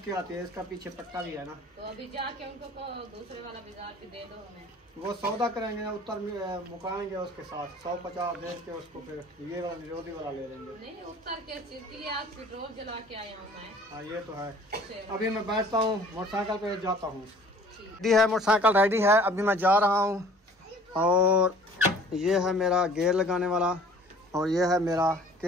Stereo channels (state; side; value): normal; both; correlation 0.51